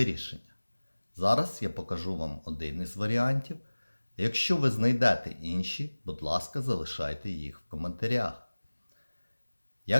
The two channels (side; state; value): both; inverted; correlation -1.00